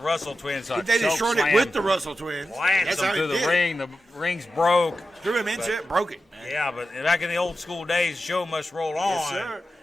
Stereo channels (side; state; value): both; normal; correlation 0.91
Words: Twins. They destroyed it with the Russell Twins. Lanced That's them how through he the did ring. The rings broke. Threw him into it, broke it. Man. Yeah, but back in the old school days, show must roll on. Yes, sir.